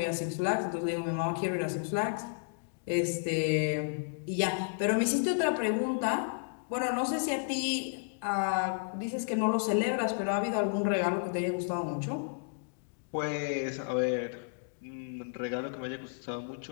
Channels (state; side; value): silent; right; digital silence